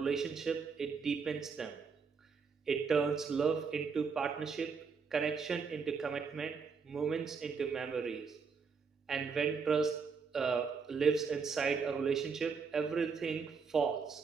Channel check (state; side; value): quieter; left; 5.5 dB